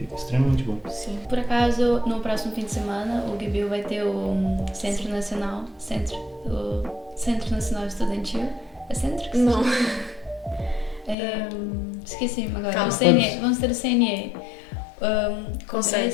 Extremamente bom. Sim. Por acaso, no próximo fim de semana, o GBU vai ter o Centro Nacional Estudantil. É centro que se Não. chama? Esqueci agora. Calma. O CNE. Vamos ter o CNE.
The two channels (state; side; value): drops out; right; at 11.2 s